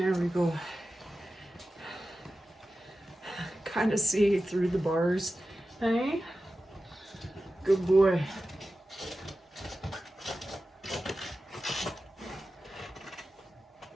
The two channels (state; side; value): normal; both; correlation 0.93